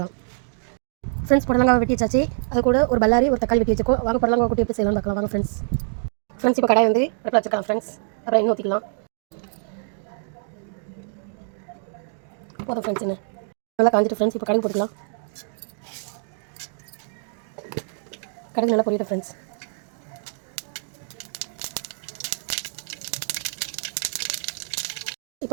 ஃப்ரெண்ட்ஸ் புடலங்காய் வெட்டி வச்சாச்சு. அது கூட ஒரு பல்லாரி ஒரு தக்காளி வெட்டி வச்சுக்கோ. வாங்க புடலங்காய் கூட்டி எப்படி செய்யலாம்னு பார்க்கலாம். வாங்க ஃப்ரெண்ட்ஸ் இப்போ கடாய் வந்து அடுப்பில் வச்சுக்கலாம் ஃப்ரெண்ட்ஸ். அப்புறம் எண்ணெய் ஊற்றிக்கலாம். போதும் ஃப்ரெண்ட்ஸ், என்ன நல்லா காஞ்சிட்டு ஃப்ரெண்ட்ஸ். இப்போ கடுகு போட்டுக்கலாம். கடுகு நல்லா பொரியட்டும் ஃப்ரெண்ட்ஸ்.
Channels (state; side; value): silent; left; digital silence